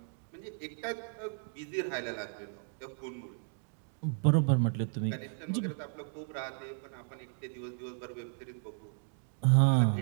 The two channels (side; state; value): left; silent; 55 dB below the other